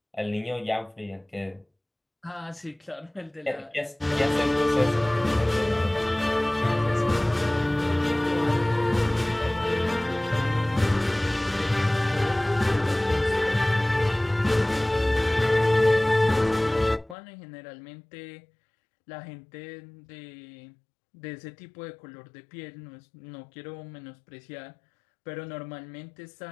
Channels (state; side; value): drops out; right; at 17.2 s